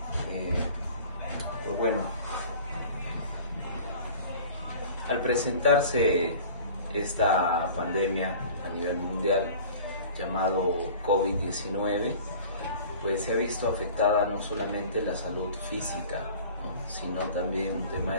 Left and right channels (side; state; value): both; inverted; correlation -0.43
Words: Eh, pues bueno, al presentarse esta pandemia a nivel mundial llamado COVID-19, pues se ha visto afectada no solamente la salud física, ¿no?, sino también un tema